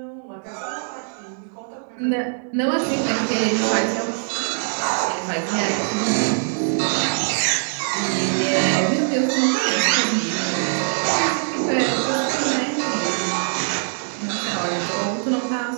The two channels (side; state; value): left; silent; digital silence